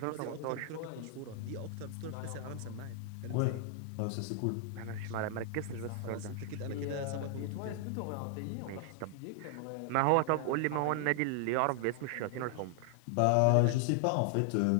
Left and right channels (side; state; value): both; different; correlation 0.00